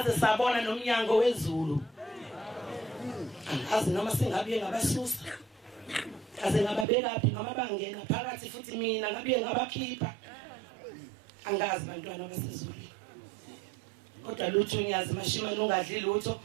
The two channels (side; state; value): left; drops out; at 6.9 s